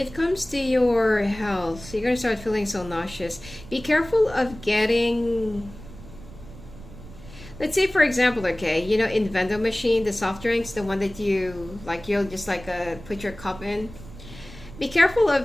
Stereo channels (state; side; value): noise; right; rumble, 17 dB below the sound